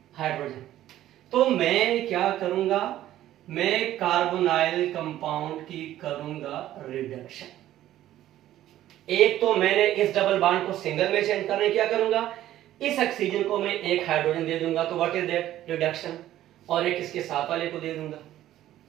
हाइड्रोजन, तो मैं क्या करूंगा, मैं कार्बोनाइल कंपाउंड की करूंगा रिडक्शन। एक तो मैंने इस डबल बॉन्ड को सिंगल में चेंज करने क्या करूंगा, इस ऑक्सीजन को मैं एक हाइड्रोजन दे दूंगा, तो व्हाट इज दैट, रिडक्शन। और एक इसके साथ वाले को दे दूंगा,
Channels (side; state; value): left; quieter; 13.3 dB